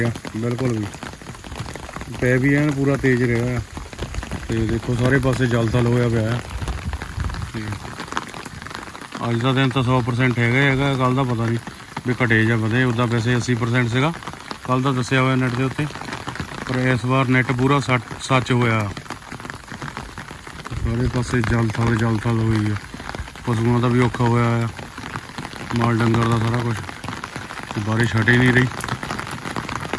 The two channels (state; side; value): identical; both; correlation 1.00